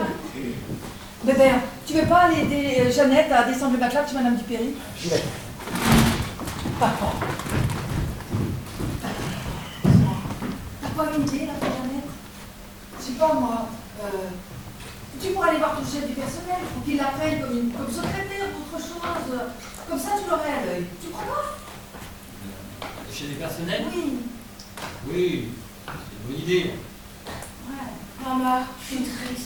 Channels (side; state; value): both; identical; correlation 1.00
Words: Bébert, tu veux pas aller aider Jeannette à descendre le matelas chez Madame Dupéry? J'y vais. Papa. T'as pas une idée, là, Jeannette? Je sais pas, moi. Tu pourrais aller voir ton chef du personnel pour qu'il l'appelle comme secrétaire ou autre chose. Comme ça, tu l'aurais à l'œil. Tu crois pas? Le chef du personnel? Oui. Oui, c'est une bonne idée. Ouais. Maman, je suis